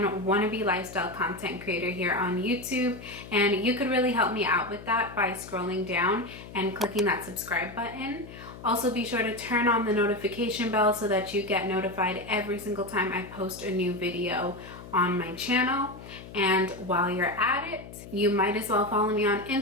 wannabe lifestyle content creator here on YouTube. And you could really help me out with that by scrolling down and clicking that subscribe button. Also, be sure to turn on the notification bell so that you get notified every single time I post a new video on my channel. And while you're at it, you might as well follow me on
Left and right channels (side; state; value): left; noise; hum, 15 dB below the sound